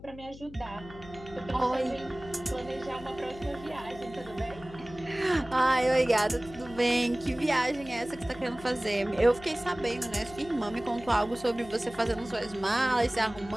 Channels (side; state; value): left; noise; hum, 17 dB below the sound